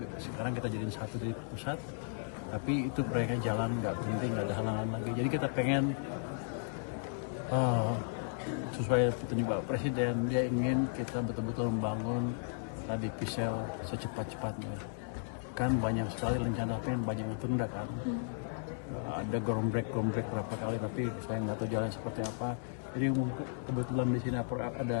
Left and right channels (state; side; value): silent; right; digital silence